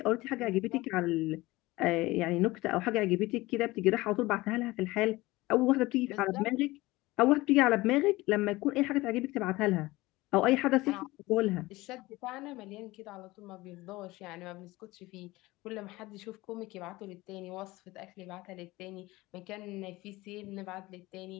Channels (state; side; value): quieter; right; 20.0 dB